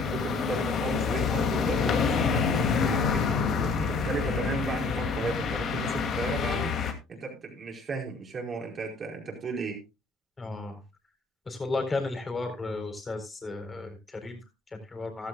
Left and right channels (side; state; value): right; quieter; 3.5 dB